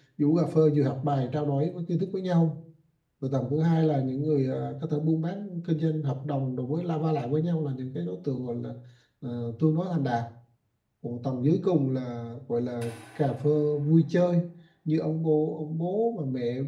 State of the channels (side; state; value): both; identical; correlation 1.00